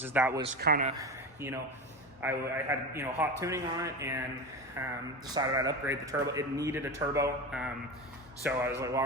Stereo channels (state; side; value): normal; both; correlation 0.24